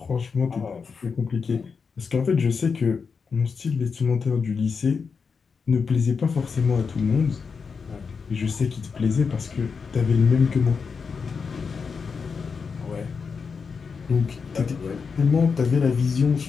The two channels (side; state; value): right; quieter; 5.5 dB